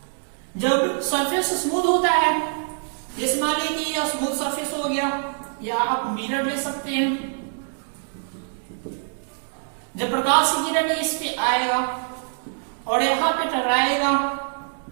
जब सरफेस स्मूथ होता है, जैसे मान लीजिए कि यह स्मूथ सरफेस हो गया, या आप मिरर ले सकते हैं। जब प्रकाश की किरण इस पे आएगा और यहाँ पे टकराएगा,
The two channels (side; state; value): left; silent; 62 dB below the other